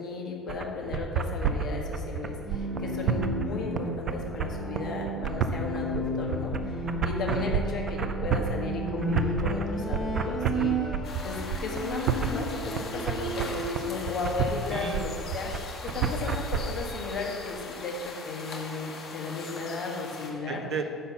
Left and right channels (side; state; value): both; normal; correlation 0.30